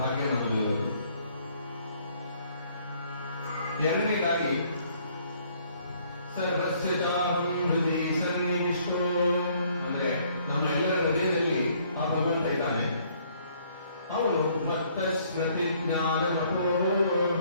ನಮ್ಮದು ಇರೋದು. ಎರಡನೇದಾಗಿ, ಸರ್ವಸ್ಯ ಚಾಹಂ ಹೃದಿ ಸನ್ನಿವಿಷ್ಟೋ, ಅಂದ್ರೆ ನಮ್ಮ ಎಲ್ಲರ ಹೃದಯದಲ್ಲಿ ಆ ಭಗವಂತ ಇದ್ದಾನೆ. ಅವನು ಮತ್ತ ಸ್ಮೃತಿ ಜ್ಞಾನ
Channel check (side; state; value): both; inverted; correlation -0.63